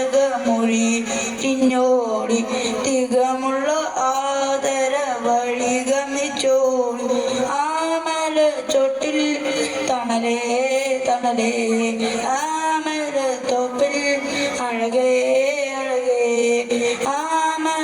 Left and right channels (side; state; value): both; identical; correlation 1.00